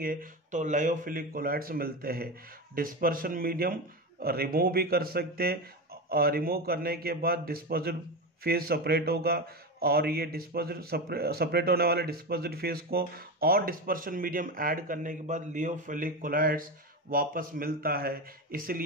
तो लायोफिलिक कोलाइड्स मिलते हैं। डिस्पर्शन मीडियम रिमूव भी कर सकते हैं, और रिमूव करने के बाद डिस्पर्स्ड फेस सेपरेट होगा, और ये सेपरेट होने वाले डिस्पर्स्ड फेस को और डिस्पर्शन मीडियम ऐड करने के बाद लायोफिलिक कोलाइड्स वापस मिलता है,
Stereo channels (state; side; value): normal; both; correlation 0.19